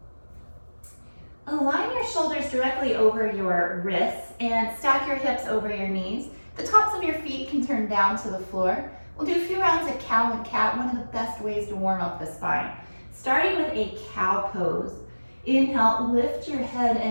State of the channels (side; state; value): both; inverted; correlation -1.00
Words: Align your shoulders directly over your wrists and stack your hips over your knees. The tops of your feet can turn down to the floor. We'll do a few rounds of cow and cat, one of the best ways to warm up the spine. Starting with a cow pose. Inhale, lift your head